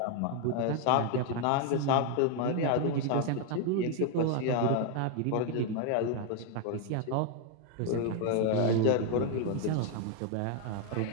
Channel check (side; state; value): both; different; correlation 0.01